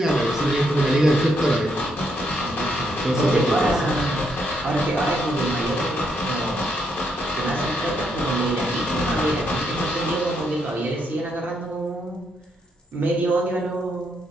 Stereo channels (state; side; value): normal; both; correlation 0.77